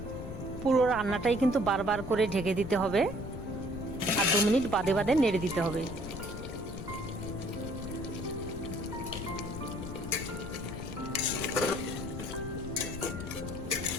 পুরো রান্নাটাই কিন্তু বারবার করে ঢেকে দিতে হবে আর 2 মিনিট বাদে বাদে নেড়ে দিতে হবে।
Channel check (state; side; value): noise; left; rumble, 9 dB below the sound